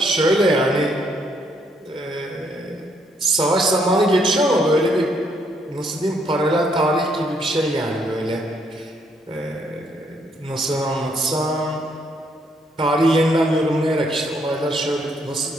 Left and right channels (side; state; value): both; normal; correlation 0.71